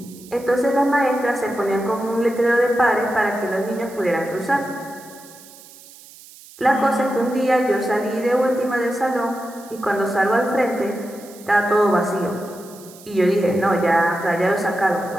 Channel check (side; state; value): right; noise; hiss, 21 dB below the sound